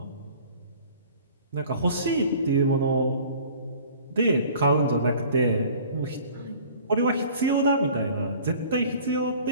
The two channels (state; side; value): inverted; both; correlation -0.48